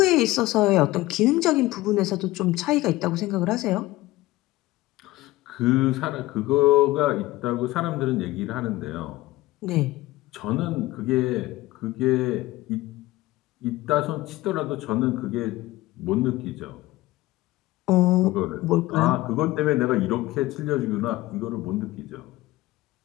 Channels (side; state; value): right; quieter; 18.2 dB